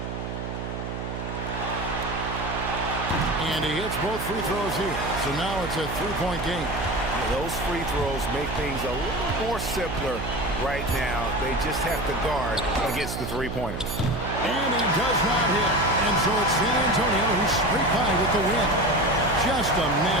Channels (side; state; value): right; noise; hum, 5 dB below the sound